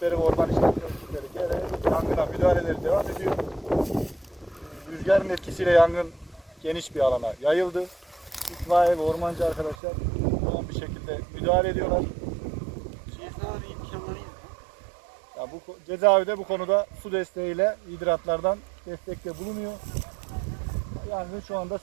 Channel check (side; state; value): left; drops out; at 9.8 s